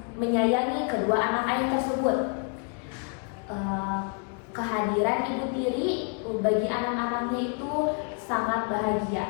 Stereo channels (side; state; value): right; quieter; 39.4 dB